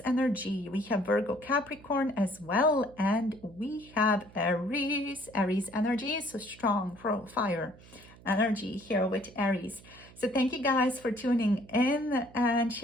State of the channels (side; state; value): right; noise; hum, 22 dB below the sound